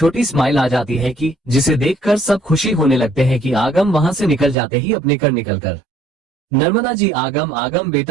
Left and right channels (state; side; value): drops out; left; at 4.5 s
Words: स्माइल आ जाती है कि जिसे देखकर सब खुशी होने लगते हैं कि आगम वहां से निकल जाते ही अपने कर निकलकर। नर्मदा जी आगम आगम